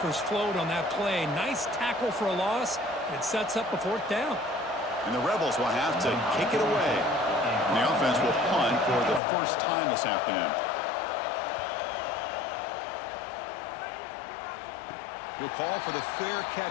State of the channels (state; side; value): drops out; right; at 9.2 s